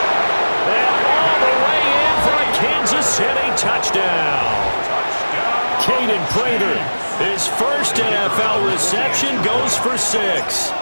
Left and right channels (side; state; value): both; inverted; correlation -1.00